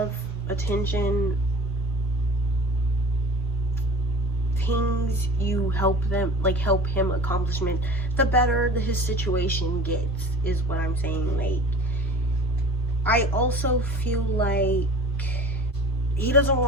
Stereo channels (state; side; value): normal; both; correlation 0.39